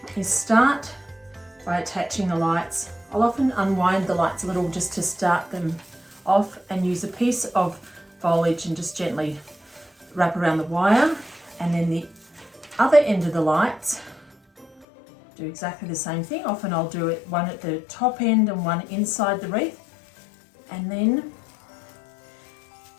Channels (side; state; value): right; drops out; at 14.9 s